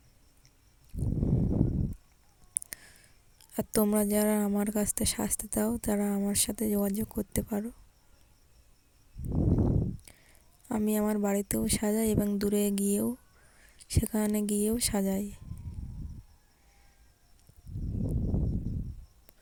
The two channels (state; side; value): identical; both; correlation 1.00